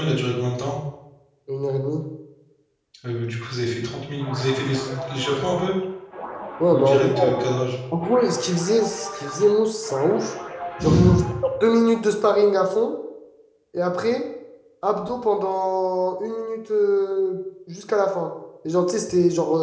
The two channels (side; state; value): both; identical; correlation 1.00